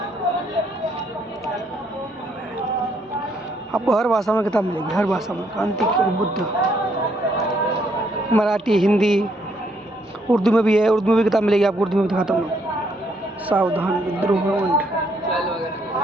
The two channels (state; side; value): normal; both; correlation 0.71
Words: आपको हर भाषा में किताब मिलेगी, हर भाषा में। क्रांति और बुद्ध, मराठी, हिंदी, उर्दू में भी है। उर्दू में भी किताब मिलेगी आपको, उर्दू में भी दिखाता हूँ। सावधान विद्रोह